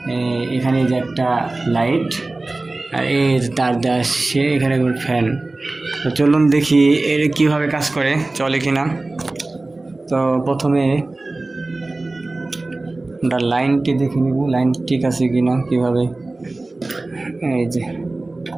এখানে যে একটা লাইট আর এই তার দেওয়া আসছে, এখানে ফ্যান। তো চলুন দেখি এর কীভাবে কাজ করে, চলে কিনা। তো প্রথমে আমরা লাইনটি দেখে নিব, লাইন ঠিক আছে কিনা। কীভাবে, এই যে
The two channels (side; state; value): left; quieter; 3.1 dB